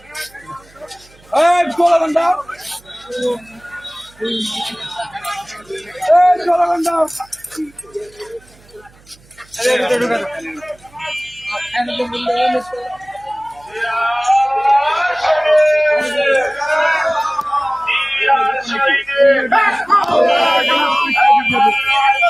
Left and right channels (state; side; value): noise; right; hum, 28 dB below the sound